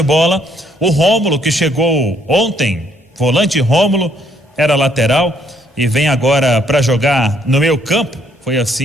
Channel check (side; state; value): both; normal; correlation 0.68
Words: o Rômulo, que chegou ontem, volante Rômulo, era lateral e vem agora para jogar no meio campo. Foi